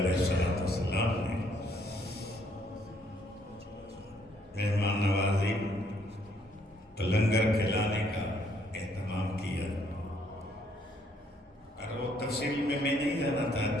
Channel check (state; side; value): normal; both; correlation 0.68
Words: السلام نے مہمان نوازی لنگر کھلانے کا اہتمام کیا. اور وہ تفصیل میں نہیں جانا